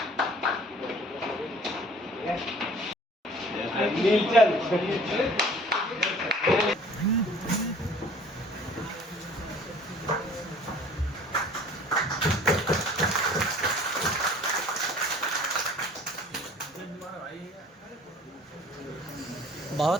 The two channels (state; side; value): normal; both; correlation 0.50